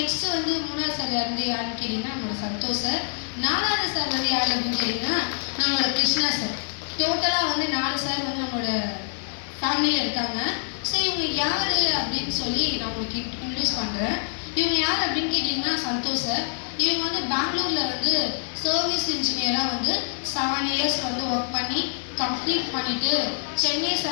வந்து 3ஆவது சார் யாருன்னு கேட்டிங்கன்னா நம்மளோட சந்தோஷ் சார். 4ஆவது சார் வந்து யார் அப்படின்னு கேட்டிங்கன்னா நம்மளோட கிருஷ்ணா சார். டோட்டலாக வந்து 4 சார் வந்து நம்மளோட ஃபேமிலியில் இருக்காங்க. ஸோ இவங்க யார் அப்படின்னு சொல்லி நான் உங்களுக்கு இன்ட்ரடியூஸ் பண்ணுறேன். இவங்க யார் அப்படின்னு கேட்டிங்கன்னா சந்தோஷ் சார். இவங்க வந்து பெங்களூரில் வந்து சர்வீஸ் இன்ஜினியராக வந்து 7 இயர்ஸ் வந்து ஒர்க் பண்ணி கம்ப்ளீட் பண்ணிவிட்டு சென்னை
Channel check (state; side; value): silent; right; 60 dB below the other